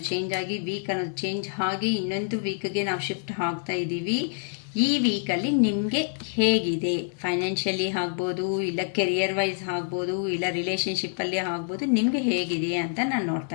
ಚೇಂಜ್ ಆಗಿ ವೀಕ್ ಅನ್ನೋದು ಚೇಂಜ್ ಆಗಿ ಇನ್ನೊಂದು ವೀಕ್ಗೆ ನಾವು ಶಿಫ್ಟ್ ಆಗ್ತಾ ಇದ್ದೀವಿ. ಈ ವೀಕಲ್ಲಿ ನಿಮಗೆ ಹೇಗಿದೆ? ಫೈನಾನ್ಷಿಯಲಿ ಆಗ್ಬೋದು, ಇಲ್ಲ ಕೆರಿಯರ್ ವೈಸ್ ಆಗ್ಬೋದು, ಇಲ್ಲ ರಿಲೇಷನ್ಶಿಪ್ಪಲ್ಲಿ ಆಗ್ಬೋದು. ನಿಮಗೆ ಹೇಗಿದೆ ಅಂತ ನಾನು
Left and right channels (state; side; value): silent; right; 60 dB below the other